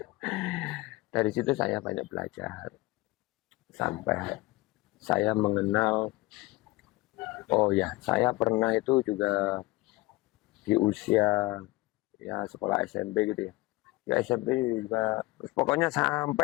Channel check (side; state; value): right; quieter; 21.2 dB